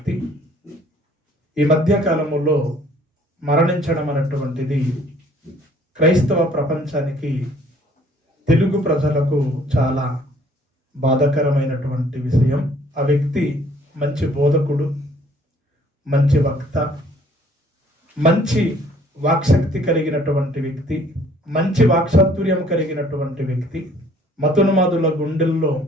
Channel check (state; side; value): normal; both; correlation 0.58